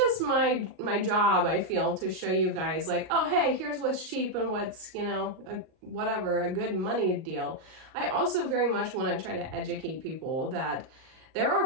my job, I feel, to show you guys like, oh, hey, here's what's cheap and what's, you know, a good money deal. I also very much want to try to educate people that there are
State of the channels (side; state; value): left; late; 38 ms